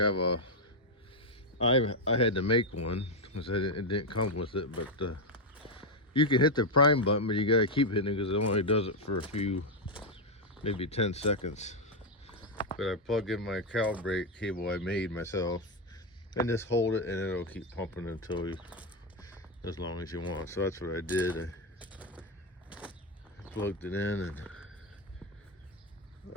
had to make one because it didn't come with it. But you can hit the prime button, but you gotta keep hitting it because it only does it for a few, maybe 10 seconds. But I plug in my calibrate cable I made myself, and just hold it, and it'll keep pumping until as long as you want. So that's what I did. I plugged it in and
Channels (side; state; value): both; normal; correlation 0.04